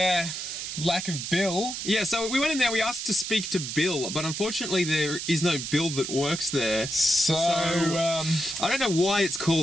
lack of Bill. Yeah, so we went in there, we asked to speak to Bill, but unfortunately there is no Bill that works there. So I don't know why it's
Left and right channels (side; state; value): right; noise; hiss, 6 dB below the sound